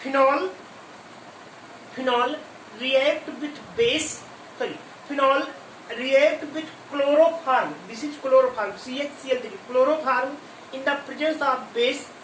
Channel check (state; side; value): identical; both; correlation 1.00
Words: phenol react with phenol react with chloroform, this is chloroform CHCl3 chloroform in the presence of base